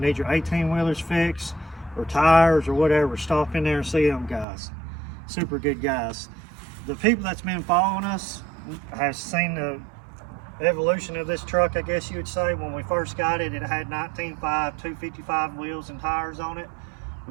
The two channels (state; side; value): drops out; left; at 4.5 s